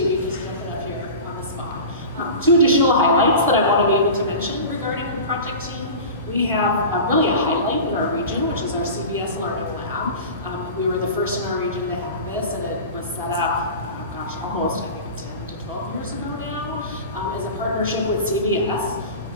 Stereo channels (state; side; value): inverted; both; correlation -0.33